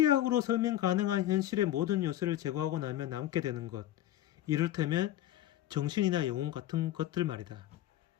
설명 가능한 현실의 모든 요소를 제거하고 나면 남게 되는 것, 이를테면 정신이나 영혼 같은 것들 말이다.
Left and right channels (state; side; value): quieter; right; 13.4 dB